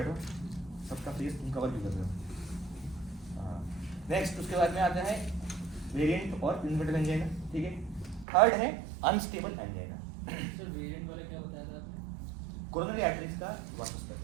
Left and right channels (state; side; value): drops out; left; at 8.2 s